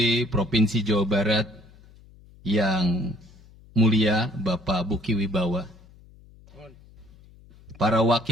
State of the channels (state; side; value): noise; left; hum, 25 dB below the sound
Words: Provinsi Jawa Barat yang mulia Bapak Buki Wibawa, para